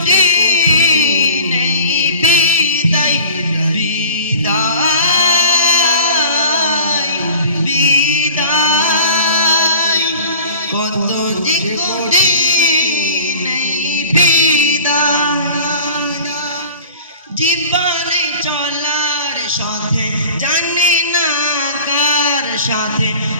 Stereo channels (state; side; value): inverted; both; correlation -0.44